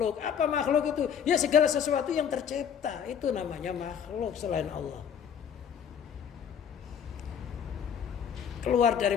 Apa makhluk itu? Ya segala sesuatu yang tercipta, itu namanya makhluk selain Allah. Keluar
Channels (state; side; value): quieter; right; 7.9 dB